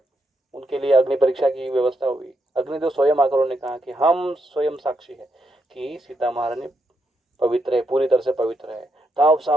उनके लिए अग्नि परीक्षा की व्यवस्था हुई, अग्निदेव स्वयं आकर उन्होंने कहा कि हम स्वयं साक्षी है कि सीता महारानी पवित्र है, पूरी तरह से पवित्र है। तब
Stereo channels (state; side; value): normal; both; correlation 0.81